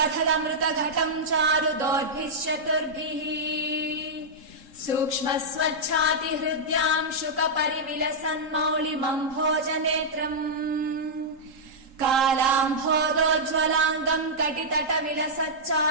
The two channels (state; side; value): late; left; 3.8 ms